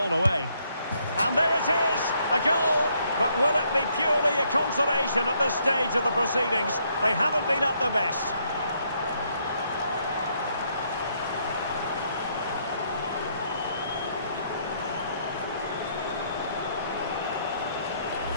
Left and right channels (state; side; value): inverted; both; correlation -0.71